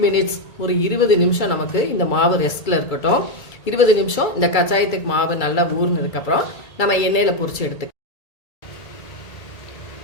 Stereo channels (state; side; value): late; right; 2.3 ms